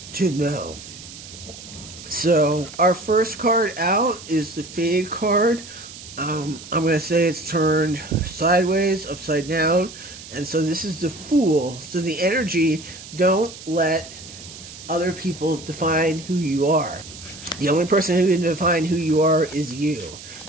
to know. So our first card out is the Fade card. I'm going to say it's turned sideways, upside down, and so this is the Fool. So the energy, don't let other people define who you are. The only person who can define who you are is you.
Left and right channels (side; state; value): right; noise; hiss, 15 dB below the sound